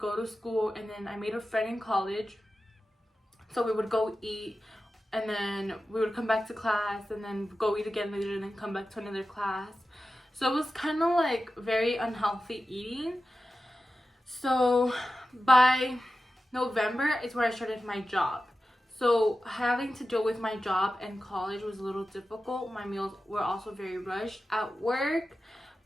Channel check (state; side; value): normal; both; correlation 0.93